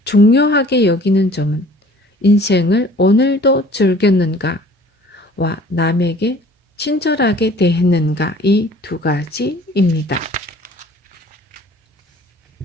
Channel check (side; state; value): both; normal; correlation 0.51